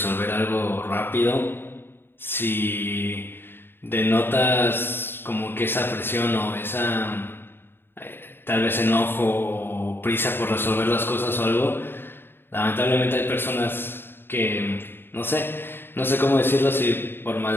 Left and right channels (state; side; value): late; right; 0.10 ms